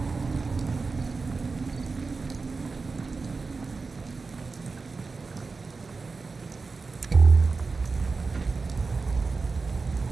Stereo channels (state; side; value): quieter; left; 4.2 dB